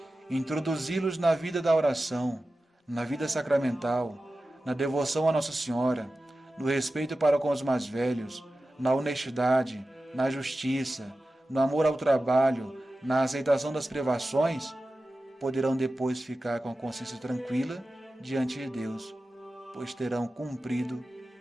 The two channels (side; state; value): both; normal; correlation 0.94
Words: introduzi-los na vida da oração, na vida sacramental, na devoção a Nossa Senhora, no respeito para com os mais velhos, na honestidade, na justiça, no amor ao trabalho, na aceitação das privações, poderão depois ficar com a consciência tranquila diante de Deus, pois terão cumprido